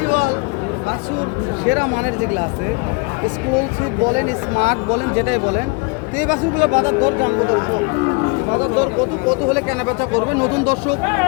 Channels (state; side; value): quieter; right; 30.4 dB